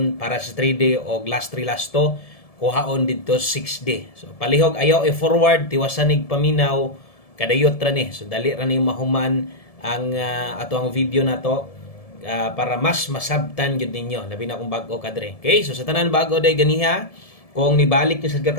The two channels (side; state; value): right; late; 1.7 ms